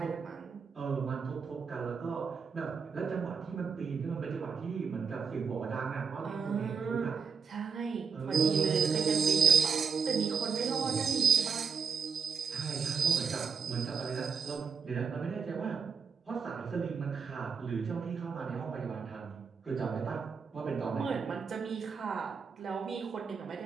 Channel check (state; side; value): quieter; left; 5.9 dB